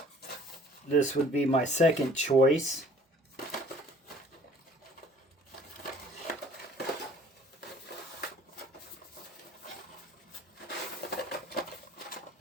This would be my second choice.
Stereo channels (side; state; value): both; normal; correlation 0.54